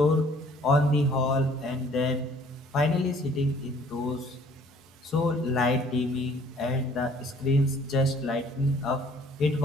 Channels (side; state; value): both; normal; correlation 0.58